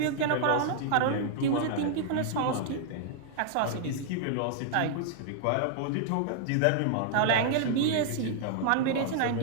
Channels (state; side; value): different; both; correlation -0.01